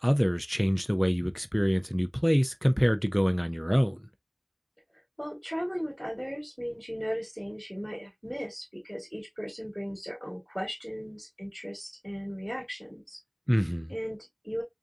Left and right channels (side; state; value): both; identical; correlation 1.00